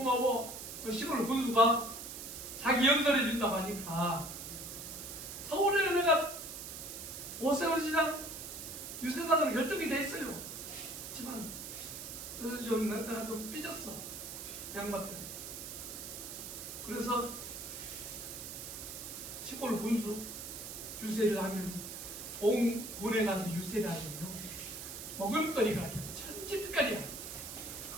시골 군수가 자기 연설해 준다고 하니까 서울에 내가 오세훈시장 유세단으로 결정이 돼 있어요. 하지만 그래서 내가 좀 삐졌어, 양반들. 그래서 시골 군수 유세를 하면서 공군에 가서 유세를 하면요, 먹을거리가 천지빛깔이야.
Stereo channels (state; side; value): noise; right; hiss, 8 dB below the sound